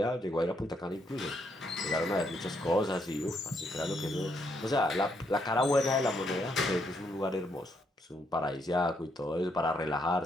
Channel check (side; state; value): both; normal; correlation 0.75